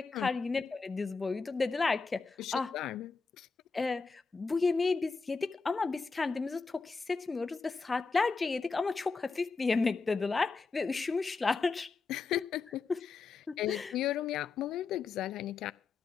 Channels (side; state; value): right; quieter; 4.5 dB